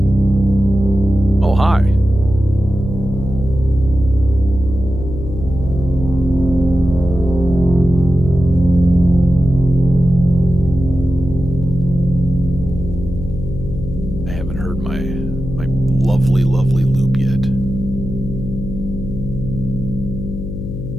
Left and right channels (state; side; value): noise; left; hum, 7 dB below the sound